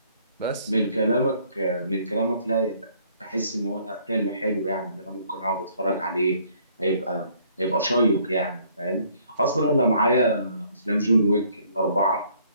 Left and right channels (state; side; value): inverted; both; correlation -0.63